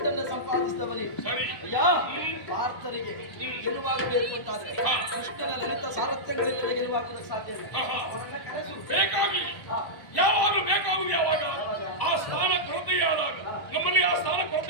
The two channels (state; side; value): late; right; 1.1 ms